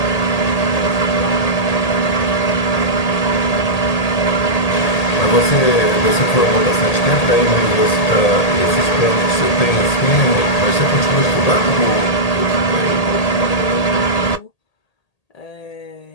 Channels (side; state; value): right; late; 1.8 ms